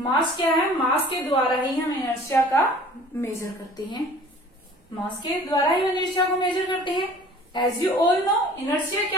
क्या है? मास के द्वारा ही हम inertia का major करते हैं। मास के द्वारा ही इनर्शिया को मेजर करते हैं। As you all know, inertia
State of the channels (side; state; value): both; normal; correlation 0.48